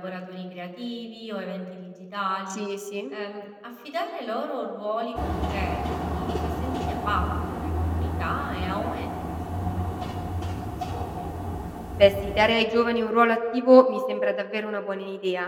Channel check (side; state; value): both; identical; correlation 1.00